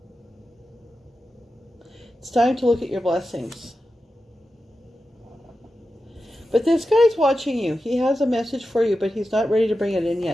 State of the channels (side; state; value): both; normal; correlation 0.91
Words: It's time to look at your blessings. But this guy's watching you. He has a message for you, but he's not ready to bring it in